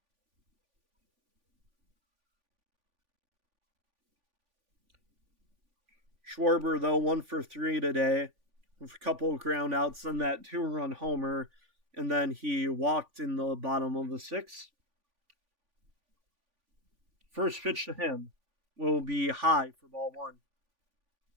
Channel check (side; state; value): left; late; 3.5 ms